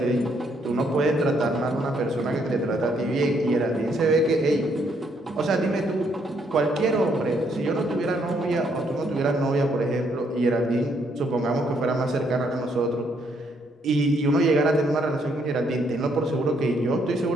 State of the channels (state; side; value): normal; both; correlation 0.71